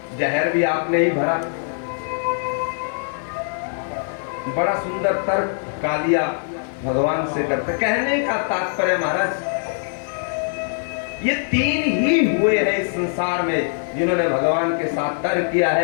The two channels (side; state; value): right; silent; 64 dB below the other